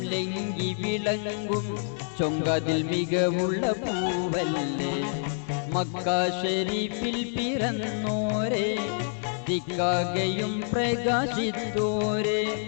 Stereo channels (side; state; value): right; silent; digital silence